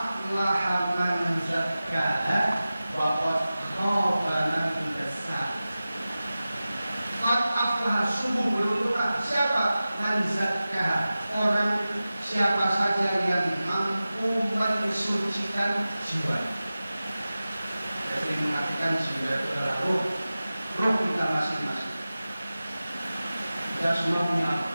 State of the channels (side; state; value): both; inverted; correlation -0.96